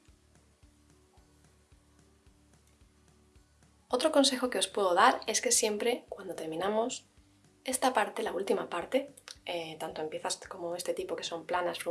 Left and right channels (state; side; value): identical; both; correlation 1.00